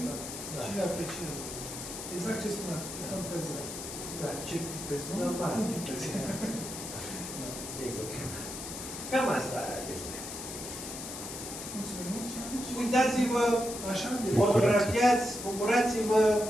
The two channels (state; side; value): noise; left; hiss, 8 dB below the sound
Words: Cine apreciază? Exact ce spuneați, cam pe zi. Da. Ce pictezi, nu? Normal. Nu pictezi. Sigur. Cam asta este. Mulțumim. Uitați-vă, fotografiați, bucurați-vă,